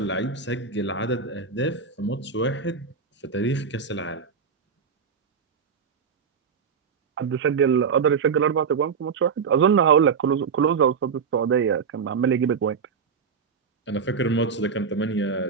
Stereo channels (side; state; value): left; quieter; 6.0 dB